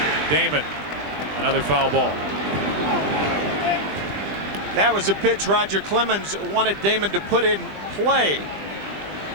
Damon, another foul ball. That was a pitch Roger Clemens wanted Damon to put in play.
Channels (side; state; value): left; late; 20 ms